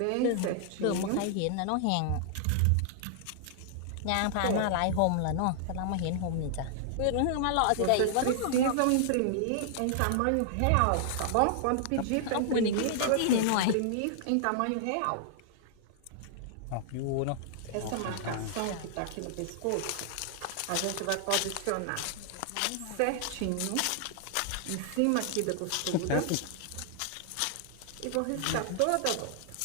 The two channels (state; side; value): different; both; correlation 0.00